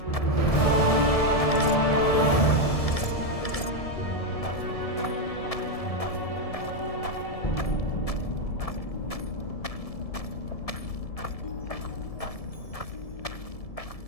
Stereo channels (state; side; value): late; right; 1.7 ms